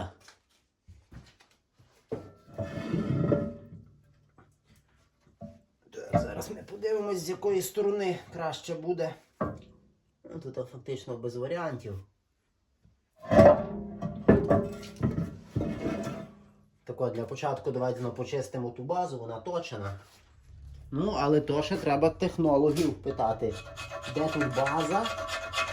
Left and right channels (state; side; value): identical; both; correlation 1.00